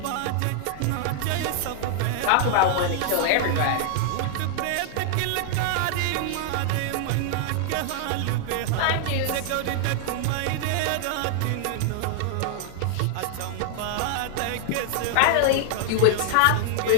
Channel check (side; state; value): both; different; correlation -0.01